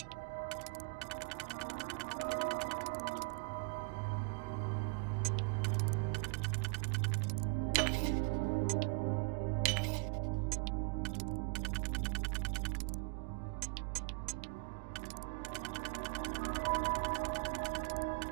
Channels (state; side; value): quieter; left; 33.5 dB